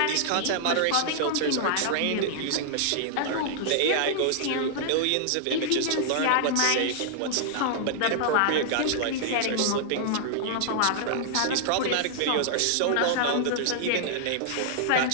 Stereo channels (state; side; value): different; both; correlation -0.01